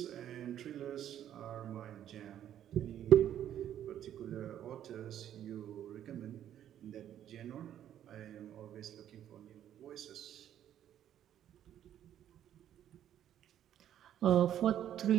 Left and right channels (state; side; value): quieter; left; 10.8 dB